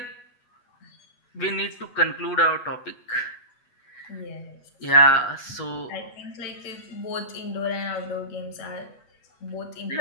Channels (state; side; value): late; right; 8.2 ms